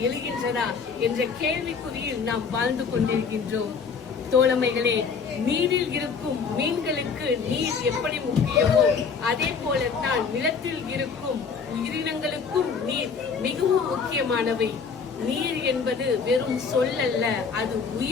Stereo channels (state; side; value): quieter; right; 5.6 dB